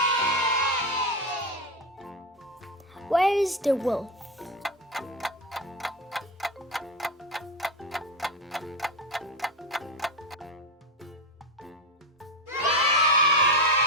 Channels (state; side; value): normal; both; correlation 0.15